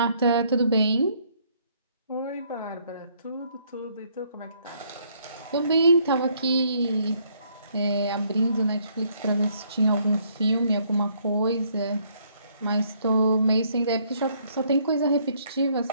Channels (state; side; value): inverted; both; correlation -0.67